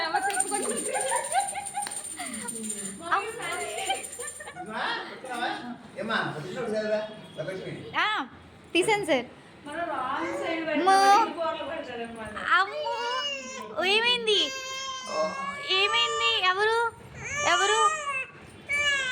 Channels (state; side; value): identical; both; correlation 1.00